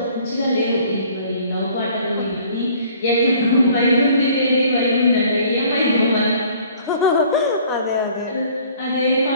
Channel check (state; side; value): inverted; both; correlation -0.55